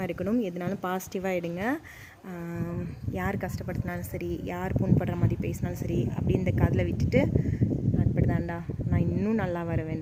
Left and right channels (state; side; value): identical; both; correlation 1.00